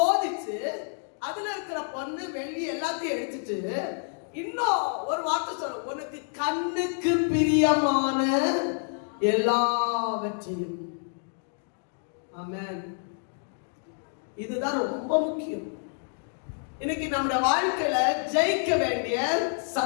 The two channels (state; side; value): silent; right; 59 dB below the other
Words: அதுல இருக்கிற பொண்ணு, வெள்ளி எல்லாத்தையும் எடுத்துட்டு இன்னும் ஒரு வார்த்தை சொல்ல, உனக்கு கண்ணுக்கு பிரியமான எல்லாவற்றையும். ஆமென். இதுதான் ரொம்ப முக்கியம். இன்னைக்கு நம்முடைய வாழ்க்கையில ஜெயிக்க வேண்டிய